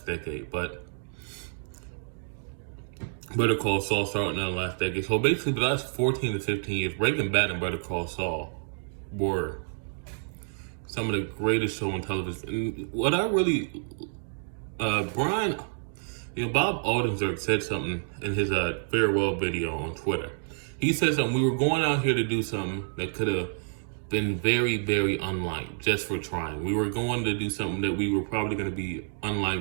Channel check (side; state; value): left; silent; 59 dB below the other